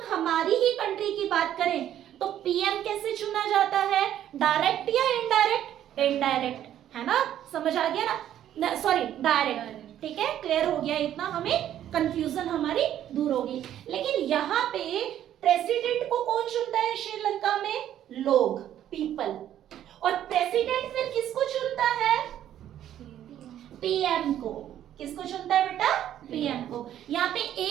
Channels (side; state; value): left; quieter; 11.3 dB